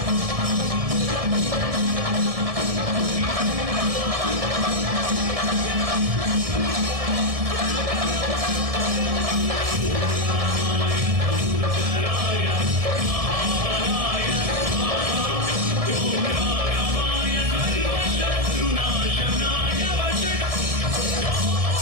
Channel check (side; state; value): left; late; 1.7 ms